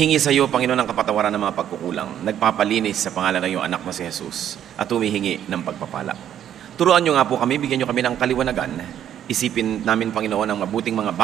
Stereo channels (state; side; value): quieter; left; 10.3 dB